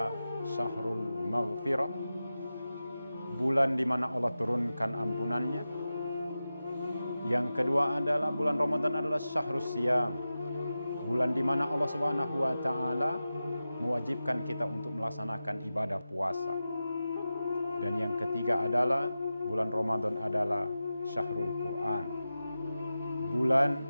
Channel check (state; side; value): inverted; both; correlation -0.93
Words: Syahrul Maghfirah, bulan di mana Allah turunkan ampunannya. Yang kedua adalah bulan Ramadan adalah Syahrus Siyam, bulan di mana Allah Subhanahu wa taala mewajibkan kita untuk melaksanakan ibadah puasa. Dan yang ketiga adalah bulan Ramadan adalah Syahrul Quran, bulan